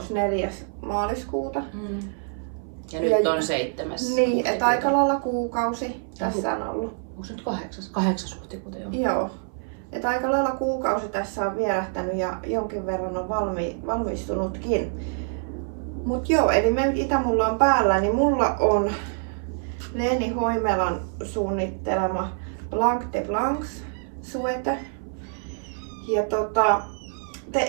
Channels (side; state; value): left; silent; 57 dB below the other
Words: 4. maaliskuuta. Ja nyt on 7. Niin, että aika lailla kuukausi tässä on ollut. Onko se nyt 8. huhtikuuta jo? Joo. Että aika lailla kuukausi tässä on vierähtänyt ja jonkin verran on valmistunutkin. Mut joo, eli mitä mulla on päällä, niin mulla on Leeni Hoimelan suunnittelema Blanc de Blancs suete. Ja